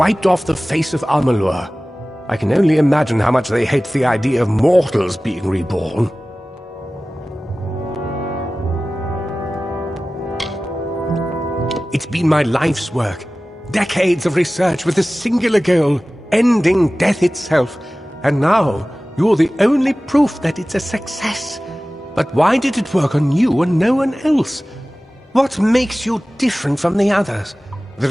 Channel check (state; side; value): normal; both; correlation 0.97